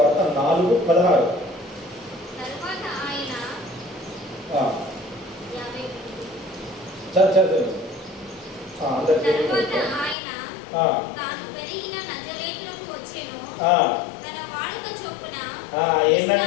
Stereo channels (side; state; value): right; drops out; at 10.2 s